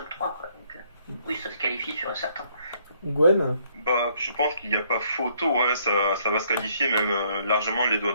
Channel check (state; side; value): inverted; both; correlation -0.67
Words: 3, quoi. Donc, oui, ça se qualifie sur un certain. Gwen? Bah, je pense qu'il n'y a pas photo, ouais, ça va se qualifier même largement les doigts